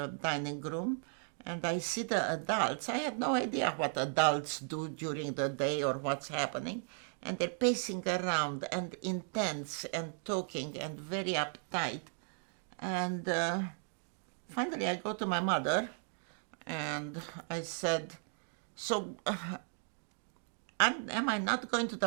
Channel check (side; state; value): left; silent; 54 dB below the other